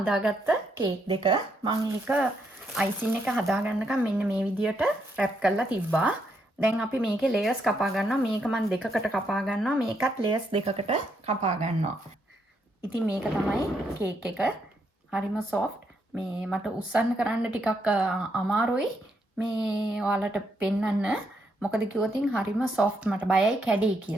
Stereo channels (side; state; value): both; normal; correlation 0.77